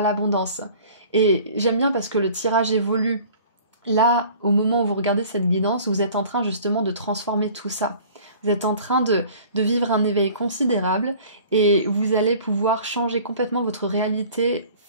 l'abondance. Et j'aime bien parce que le tirage évolue. Là, au moment où vous regardez cette guidance, vous êtes en train justement de transformer tout ça. Vous êtes en train de vivre un éveil considérable et vous allez pouvoir changer complètement votre réalité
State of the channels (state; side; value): inverted; both; correlation -0.48